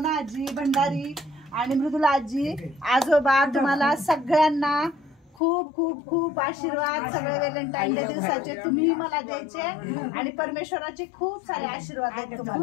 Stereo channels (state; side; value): drops out; right; at 5.4 s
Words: आजी, भंडारी आणि मृदुला आजी, आजोबा, तुम्हाला सगळ्यांना खूप खूप खूप आशीर्वाद. सगळे व्हॅलेंटाईन डे दिवसाचे तुम्ही मला द्यायचे आणि परमेश्वराचे खूप सारे आशीर्वाद आहेत